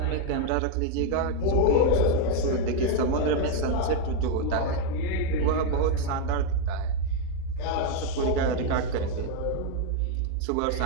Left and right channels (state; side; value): different; both; correlation 0.01